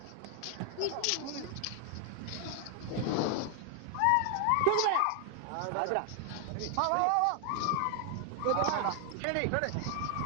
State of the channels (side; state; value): both; different; correlation 0.00